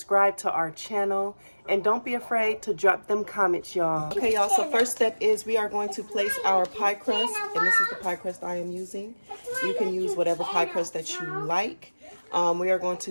to our channel, and don't be afraid to drop them comments, y'all. Okay, y'all, so first step is we are going to place our pie crust, and this is the pie crust I am using. You can use whatever pie crust that you like. We are going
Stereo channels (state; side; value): inverted; both; correlation -1.00